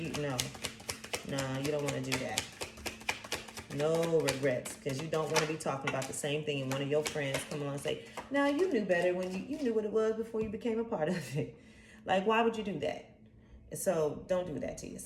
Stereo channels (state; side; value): identical; both; correlation 1.00